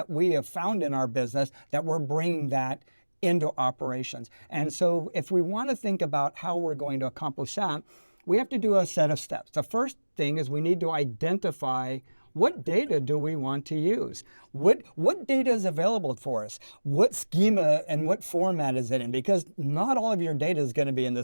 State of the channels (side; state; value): both; inverted; correlation -1.00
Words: we have found in our business that we're bringing that into operations. And so if we want to think about how we're going to accomplish that, we have to do a set of steps. The first thing is we need to identify what data do we want to use? What data is available for us? What schema and what format is it in? Because not all of your data is going to be in the